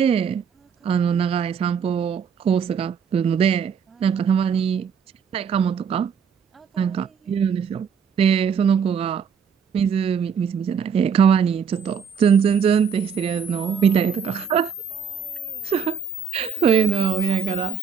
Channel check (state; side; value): quieter; left; 6.8 dB